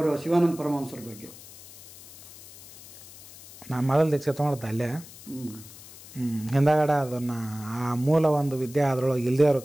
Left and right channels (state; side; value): noise; left; hiss, 18 dB below the sound